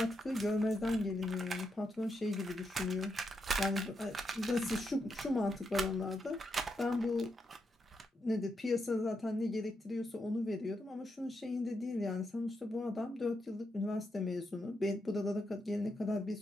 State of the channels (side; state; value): both; normal; correlation 0.83